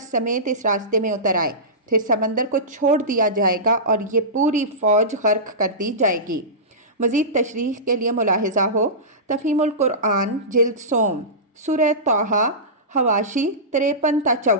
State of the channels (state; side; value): normal; both; correlation -0.20